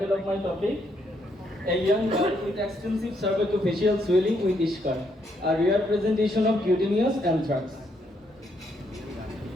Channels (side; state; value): both; normal; correlation 0.74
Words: of my topic: A young girl with extensive cervicofacial swelling with Ishkar, a rare presentation of cutaneous anthrax.